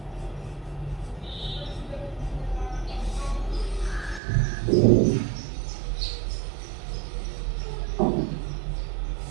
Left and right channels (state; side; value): drops out; left; at 4.2 s